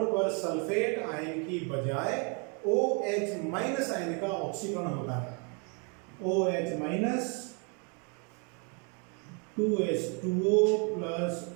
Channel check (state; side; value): quieter; left; 36.0 dB